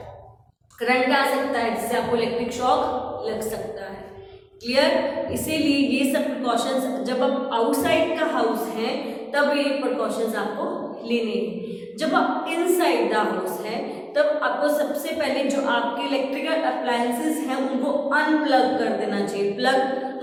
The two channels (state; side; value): identical; both; correlation 1.00